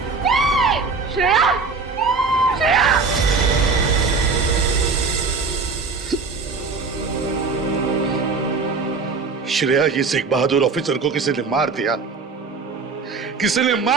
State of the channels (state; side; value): quieter; left; 4.5 dB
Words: श्रेया, ये सिख बहादुर ऑफिसर को किसी ने मार दिया, किसी ने